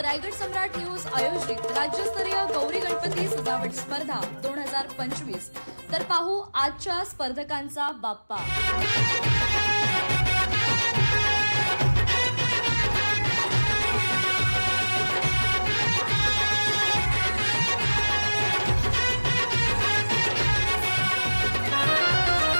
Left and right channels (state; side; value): inverted; both; correlation -1.00